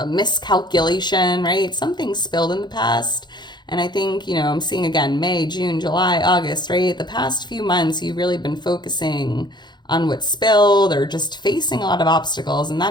miscalculation, right? Something spilled in the past. And I think, I'm seeing again, May, June, July, August, right? The past few months, you've really been focusing on what spilled or just facing a lot of obstacles. And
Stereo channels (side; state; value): right; late; 0.21 ms